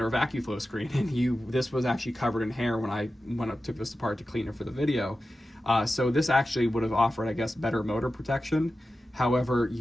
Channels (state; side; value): normal; both; correlation 0.93